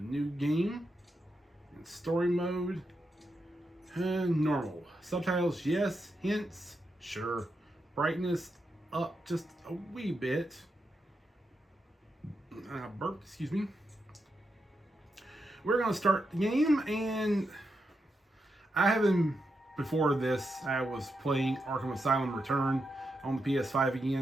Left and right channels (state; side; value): normal; both; correlation 0.85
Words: new game in story mode. Normal. Subtitles, yes. Hints, sure. Brightness up just a wee bit. Burp, excuse me. We're going to start the game, and I haven't, before this, I was playing Arkham Asylum Return on the PS5